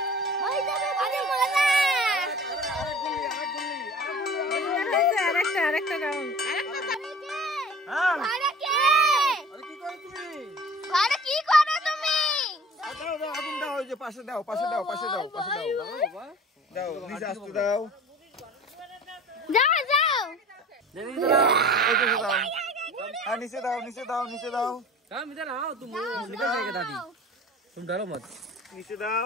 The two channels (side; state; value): both; normal; correlation 0.44